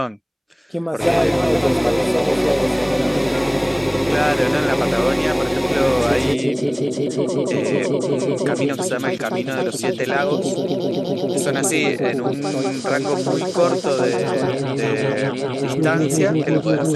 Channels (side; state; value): both; identical; correlation 1.00